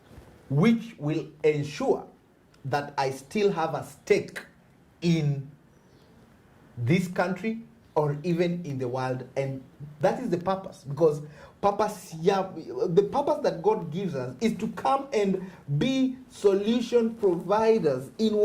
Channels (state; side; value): identical; both; correlation 1.00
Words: which will ensure that I still have a stake in this country or even in the world. And that is the purpose, because the purpose that God gives us is to come and be solution providers in